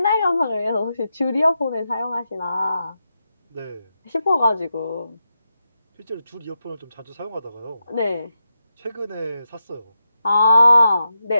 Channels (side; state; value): both; inverted; correlation -0.87